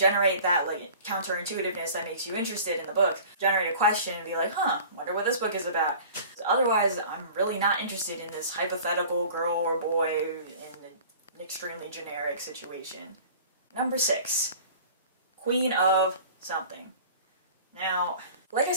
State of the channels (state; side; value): inverted; both; correlation -0.44